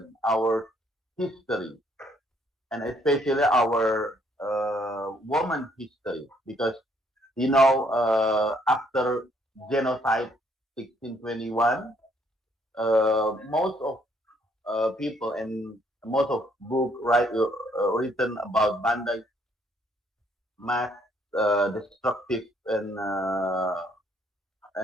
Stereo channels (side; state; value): both; normal; correlation 0.67